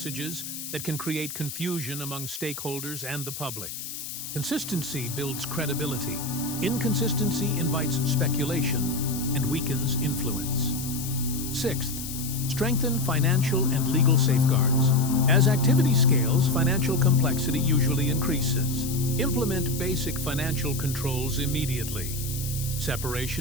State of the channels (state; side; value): noise; left; hiss, 8 dB below the sound